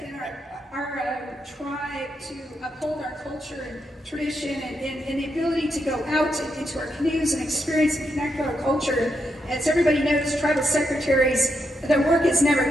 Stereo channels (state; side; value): normal; both; correlation 0.82